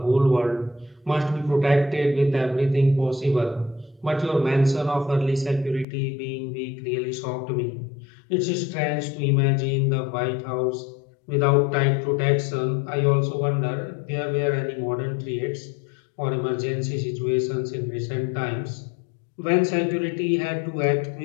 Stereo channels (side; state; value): right; drops out; at 5.9 s